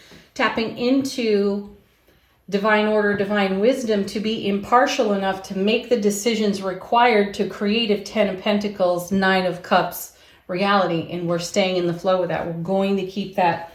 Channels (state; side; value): identical; both; correlation 1.00